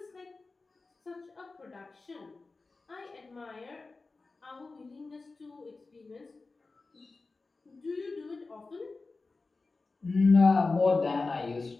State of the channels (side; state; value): right; quieter; 3.8 dB